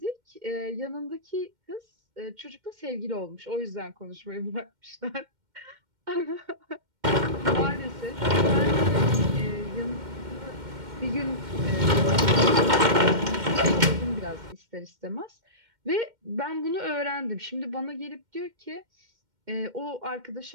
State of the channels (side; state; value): left; late; 2.1 ms